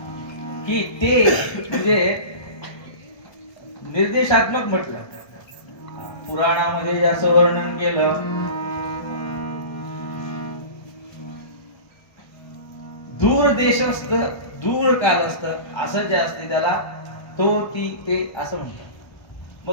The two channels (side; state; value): right; late; 1.3 ms